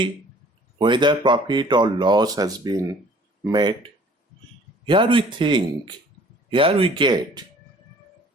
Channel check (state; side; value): normal; both; correlation 0.53